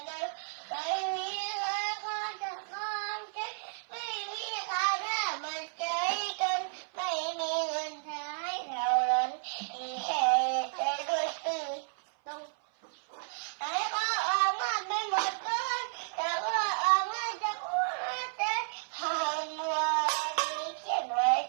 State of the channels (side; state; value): left; silent; 56 dB below the other